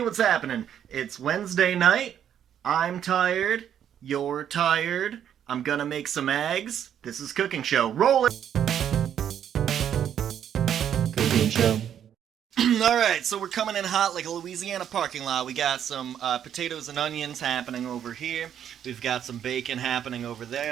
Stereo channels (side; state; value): left; quieter; 9.5 dB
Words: happening? It's Wednesday night. I'm tired. You're tired. I'm gonna make some eggs. This is Cooking Show. Roll it! Cooking show. Alright, so we're coming in hot like a Louisiana parking lot. We got some potatoes and onions happening over here. We've got some bacon happening over